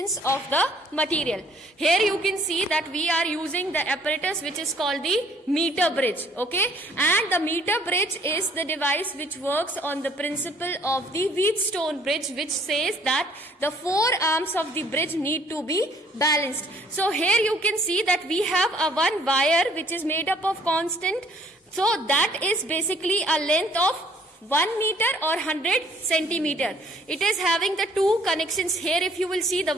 of the material. Here you can see that we are using the apparatus which is called the meter bridge. Okay, and the meter bridge is the device which works on the principle of the Wheatstone bridge, which says that the four arms of the bridge need to be balanced. So here you can see that we have a one wire which is made up of constant. So that is basically a length of 1 meter or 100 centimeter. It is having the two connections here. If you will see the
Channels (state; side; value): normal; both; correlation 0.60